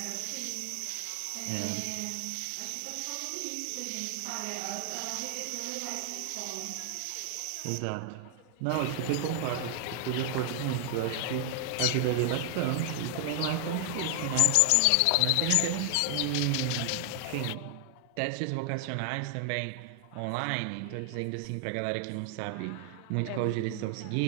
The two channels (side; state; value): both; different; correlation 0.00